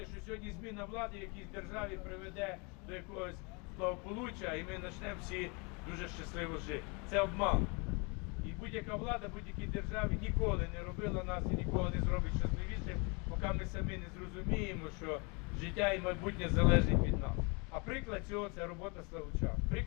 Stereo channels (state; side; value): quieter; right; 31.4 dB